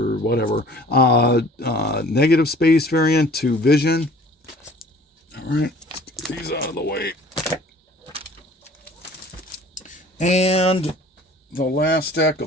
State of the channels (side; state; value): both; normal; correlation 0.50